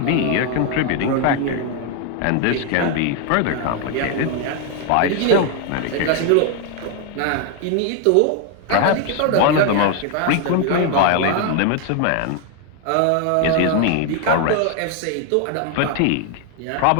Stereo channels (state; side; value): different; both; correlation 0.01